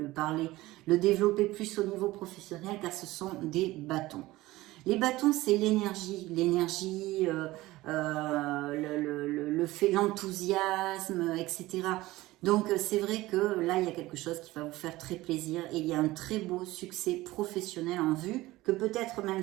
développer plus au niveau professionnel, car ce sont des bâtons. Les bâtons, c'est l'énergie, l'enthousiasme, etc. Donc c'est vrai que là, il y a quelque chose qui va vous faire très plaisir et il y a un très beau succès professionnel en vue, que peut-être même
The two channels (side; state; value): left; quieter; 18.2 dB